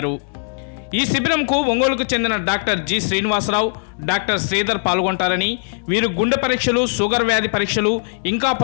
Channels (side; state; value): right; silent; digital silence